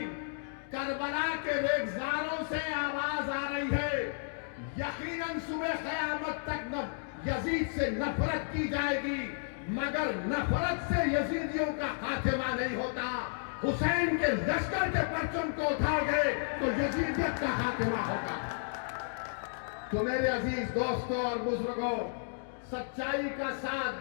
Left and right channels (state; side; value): silent; right; digital silence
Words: करबला के रेगजारों से आवाज आ रही है। यकीनन सुबह क़यामत तक यजीद से नफरत की जाएगी, मगर नफरत से यजीदियों का खात्मा नहीं होता। हुसैन के लश्कर के परचम को उठाओगे तो यजीदियत का खात्मा होगा। तो मेरे अजीज दोस्तों और बुजुर्गों, सच्चाई का साथ